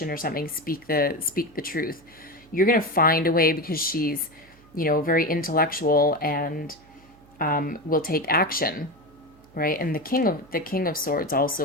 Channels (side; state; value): right; noise; hum, 27 dB below the sound